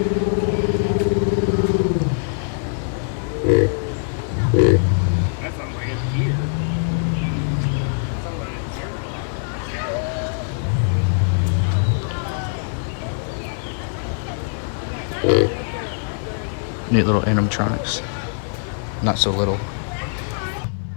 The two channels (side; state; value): right; silent; 56 dB below the other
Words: That sounds like a deer. Sounds like a deer. Neat little animatronics. Not so little.